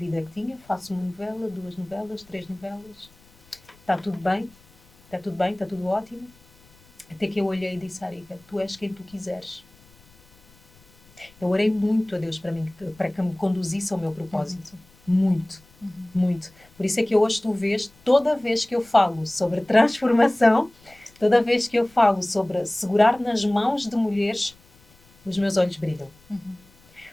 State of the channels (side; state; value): left; noise; rumble, 29 dB below the sound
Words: que tinha. Faço uma novela, 2 novelas, 3 novelas. Está tudo bem, está tudo ótimo. Até que eu olhei e disse, Arika, tu és quem tu quiseres. Eu orei muito a Deus para que me conduzisse ao meu propósito. Muito, muito. Por isso é que hoje tu vês, toda vez que eu falo sobre transformação, toda vez que eu falo sobre segurar nas mãos de mulheres, os meus olhos brilham.